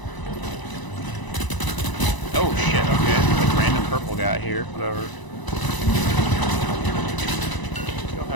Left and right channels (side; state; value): right; late; 1.0 ms